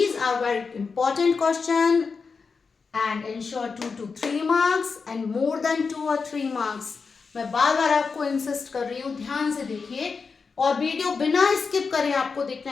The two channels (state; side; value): quieter; right; 5.0 dB